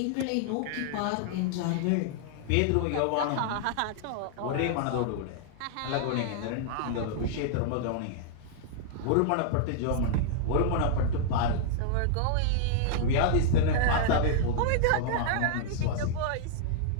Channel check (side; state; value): both; different; correlation -0.01